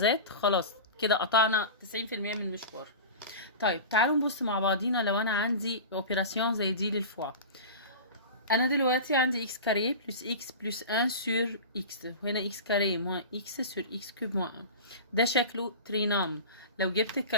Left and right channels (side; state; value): both; inverted; correlation -0.31